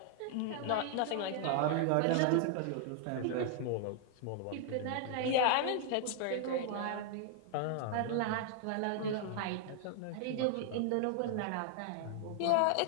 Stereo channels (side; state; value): both; different; correlation 0.00